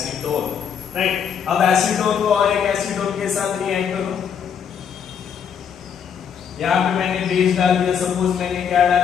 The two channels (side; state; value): right; quieter; 7.7 dB